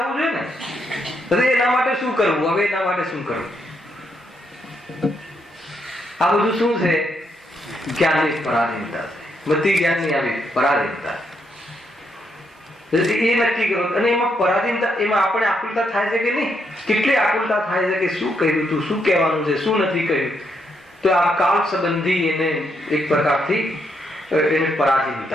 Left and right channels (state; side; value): normal; both; correlation 0.77